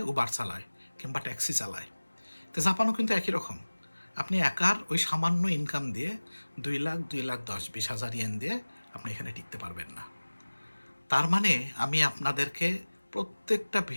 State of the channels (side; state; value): both; inverted; correlation -1.00